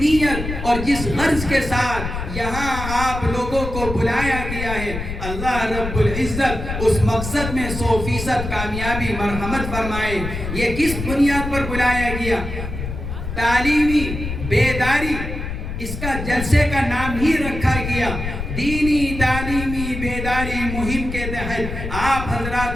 اور جس غرض کے ساتھ یہاں آپ لوگوں کو بلایا گیا ہے، اللہ رب العزت اس مقصد میں 100% کامیابی مرحمت فرمائے۔ یہ کس بنیاد پر بلایا گیا؟ تعلیمی بیداری، اس کا جلسے کا نام ہی رکھا گیا۔ دینی تعلیمی بیداری مہم کے تحت آپ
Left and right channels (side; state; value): left; noise; rumble, 6 dB below the sound